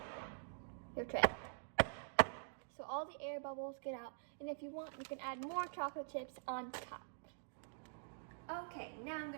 your tray so all the air bubbles get out, and if you want, you can add more chocolate chips on top. Okay, now I'm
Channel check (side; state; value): left; silent; digital silence